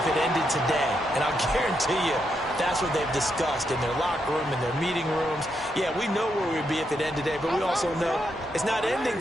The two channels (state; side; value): normal; both; correlation 0.81